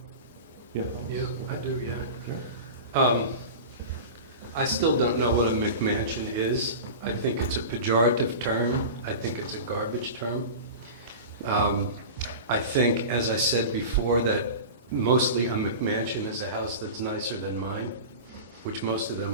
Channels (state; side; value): inverted; both; correlation -0.31